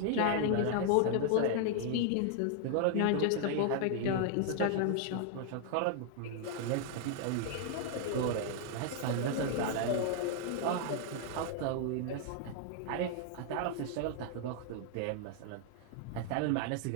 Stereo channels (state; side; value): different; both; correlation 0.00